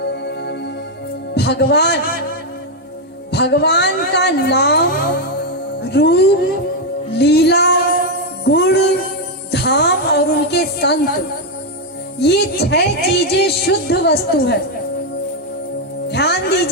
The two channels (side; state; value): both; normal; correlation 0.02